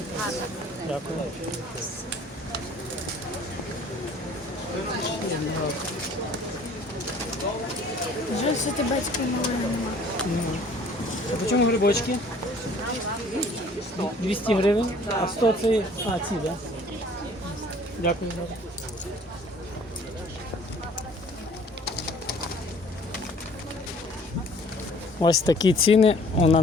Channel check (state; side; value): normal; both; correlation 0.53